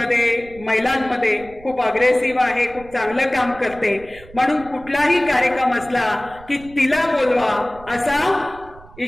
महिलांमध्ये खूप अग्रेसिव्ह आहे, खूप चांगलं काम करते, म्हणून कुठलाही कार्यक्रम असला की तिला बोलवा असा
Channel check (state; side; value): noise; right; rumble, 21 dB below the sound